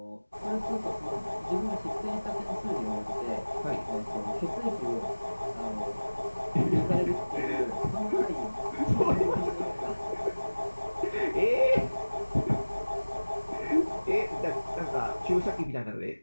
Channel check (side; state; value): both; inverted; correlation -1.00